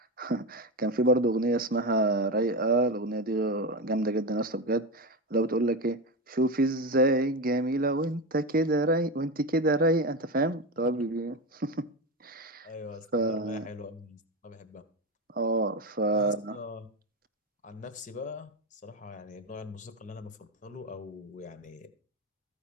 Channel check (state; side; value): normal; both; correlation 0.17